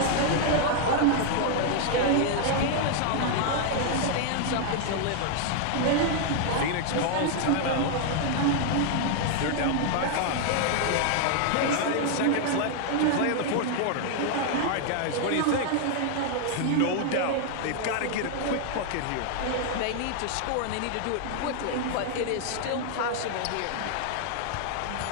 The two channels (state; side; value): different; both; correlation 0.00